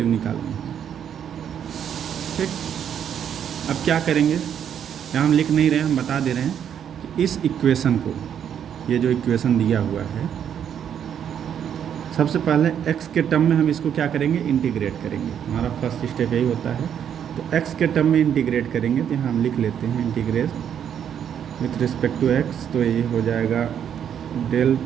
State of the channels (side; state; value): left; quieter; 8.9 dB